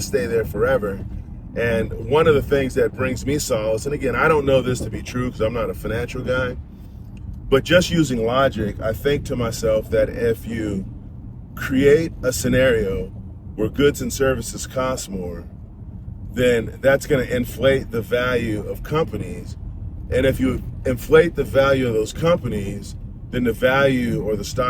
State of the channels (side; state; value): both; identical; correlation 1.00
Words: stay there forever. And one of the things that brings me solace, and again, I don't know this to be true because I'm not a financial guy, but just using logic, I think to myself that if you create a scenario where goods and services cost more, then that's going to inflate the value of companies. And if you inflate the value of those companies, then the value or the